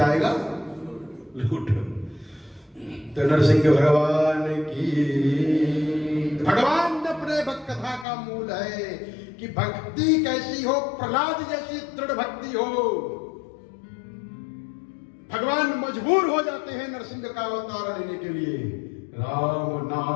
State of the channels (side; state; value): right; drops out; at 8.1 s